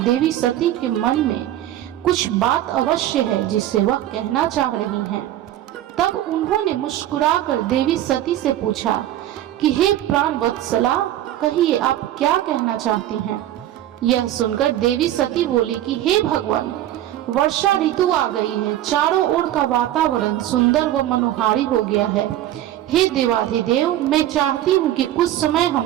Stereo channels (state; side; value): quieter; left; 13.0 dB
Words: सती के मन में कुछ बात अवश्य है जिसे वह कहना चाह रही हैं। तब उन्होंने मुस्कुराकर देवी सती से पूछा कि हे प्राण वत्सला, कहिए आप क्या कहना चाहती हैं। यह सुनकर देवी सती बोली कि हे भगवान, वर्षा ऋतु आ गई है, चारों ओर का वातावरण सुंदर व मनोहारी हो गया है। हे देवाधिदेव, मैं चाहती हूँ कि कुछ समय हम